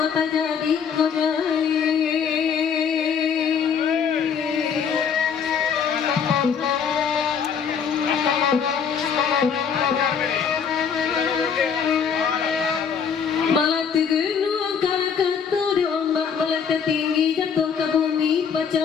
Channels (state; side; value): quieter; right; 6.9 dB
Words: Tinggi jatuh ke bumi